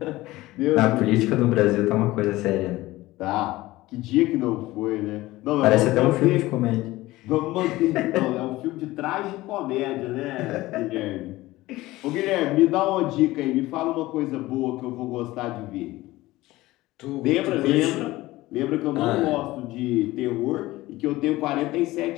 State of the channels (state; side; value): quieter; right; 18.2 dB